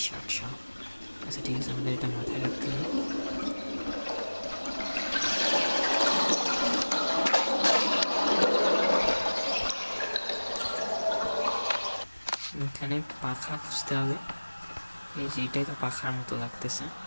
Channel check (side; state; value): both; inverted; correlation -1.00